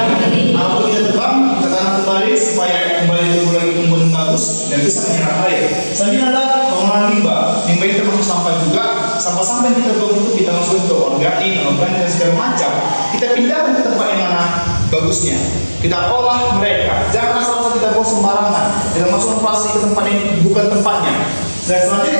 apabila tidak tebang bagus dan bisa menyerap air. Selanjutnya adalah pengolahan limbah. Limbah itu termasuk sampah juga. Sampah-sampah yang kita buang itu kita masukin ke organik, anorganik dan segala macam. Kita pindahkan ke tempat yang mana bagusnya. Kita olah mereka. Jangan asal-asal kita buang sembarangan. Kita masukkan plastik ke tempat yang bukan tempatnya. Dan selanjutnya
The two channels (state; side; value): inverted; both; correlation -1.00